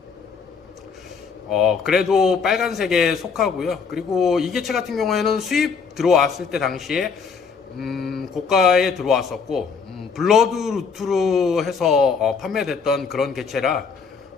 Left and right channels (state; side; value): quieter; right; 5.6 dB